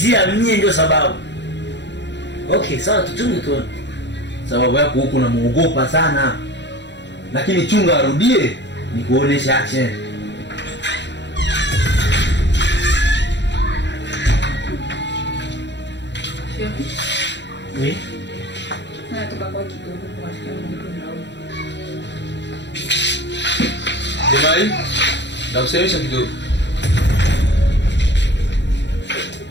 mimi ndio sababu. Okay, sawa tuchunge tu. Sababu yako huko unamuogopa sana. Lakini chunga arudie nikuonesha action. Oui. Natoka kwa kidogo kwa shikamoo nao. Jamani, nakusemesha kidogo.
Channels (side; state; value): right; late; 0.52 ms